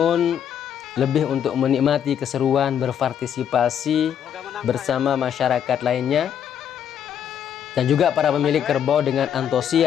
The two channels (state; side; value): quieter; right; 9.0 dB